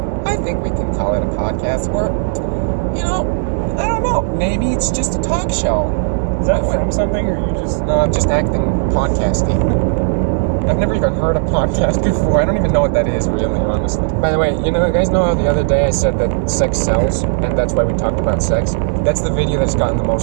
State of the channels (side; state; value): left; silent; digital silence